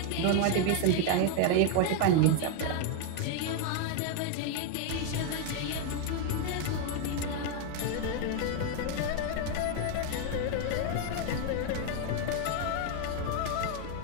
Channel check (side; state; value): both; different; correlation 0.01